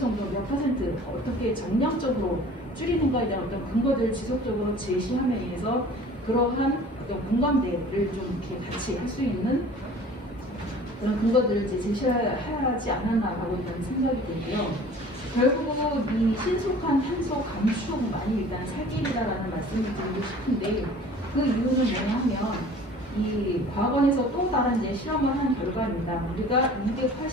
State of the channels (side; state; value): both; normal; correlation 0.46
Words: 몇 퍼센트 어떻게 정량적으로 줄이는가에 대한 어떤 근거들을 지속적으로 제시함에 의해서 그러한 어떤 공감대를 좀 이렇게 같이 할 수 있는 그런 근거들을 이제 제시하지 않았나라고 저는 생각이 되고요. 결국 이 신속한 탄소 감축만이 일단 살 길이다라는 말씀을 드리고 싶은데, 그 이유는 뭐냐면 이 과거에서 또 다른 이제 실험을 한 결과입니다. 우리가